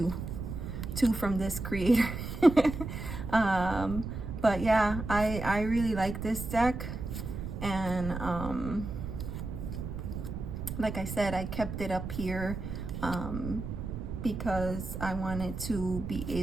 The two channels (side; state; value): right; noise; rumble, 6 dB below the sound